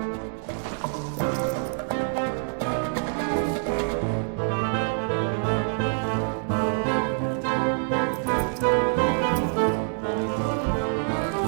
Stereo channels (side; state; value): left; silent; 61 dB below the other